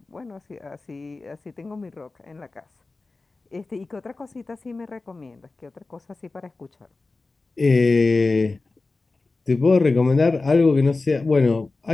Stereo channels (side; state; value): right; quieter; 3.6 dB